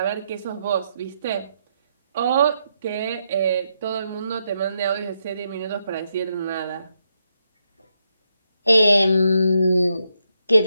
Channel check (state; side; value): inverted; both; correlation -0.81